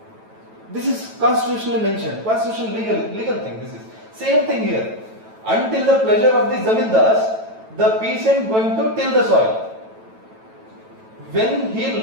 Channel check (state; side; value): late; left; 9.1 ms